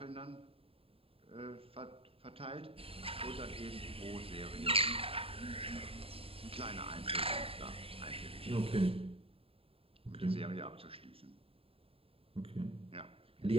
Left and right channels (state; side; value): late; left; 0.27 ms